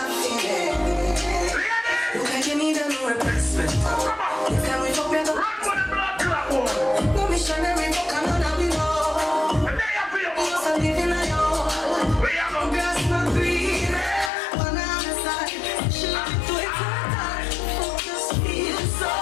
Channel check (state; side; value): drops out; right; at 14.3 s